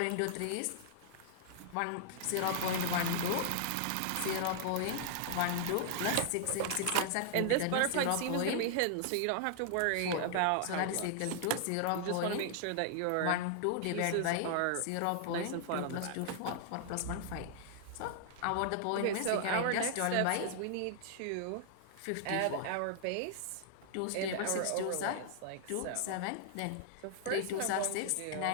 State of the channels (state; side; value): different; both; correlation -0.01